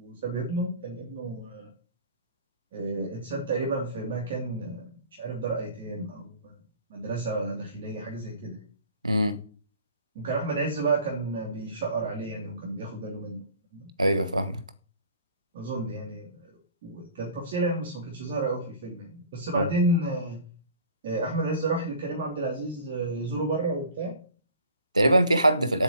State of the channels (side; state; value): both; inverted; correlation -0.48